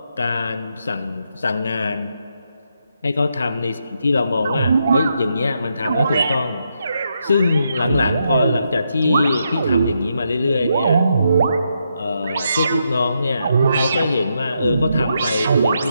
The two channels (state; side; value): inverted; both; correlation -0.81